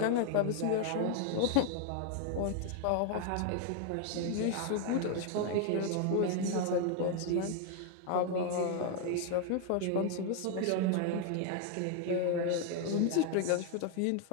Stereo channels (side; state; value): both; different; correlation 0.00